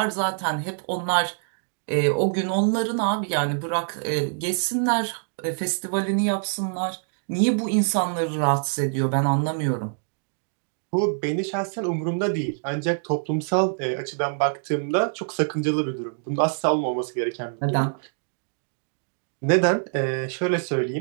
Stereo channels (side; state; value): left; silent; digital silence